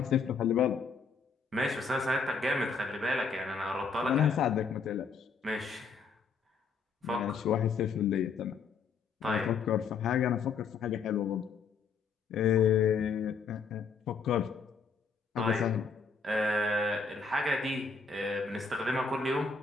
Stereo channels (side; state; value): right; quieter; 5.2 dB